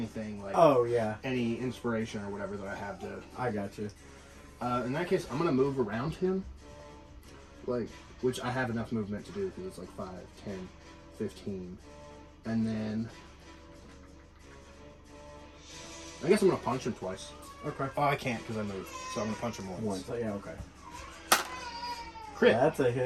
like Oh yeah, any inspiration or whatever that I have to. I got you. In that case, I'm gonna move around him, like which I have enough movement to do because it's like 5, 10, 15, and then I guess I'm gonna punch him twice. Okay. Oh, I can't because I moved, so I'm gonna punch him once. Once. Yeah. Okay. Crit. That's a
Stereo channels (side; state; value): both; identical; correlation 1.00